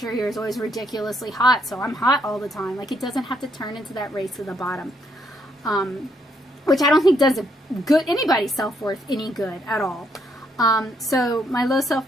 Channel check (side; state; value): both; normal; correlation 0.73